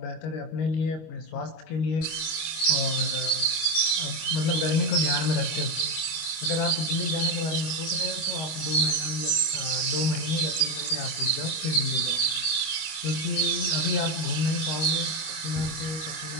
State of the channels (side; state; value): right; late; 25 ms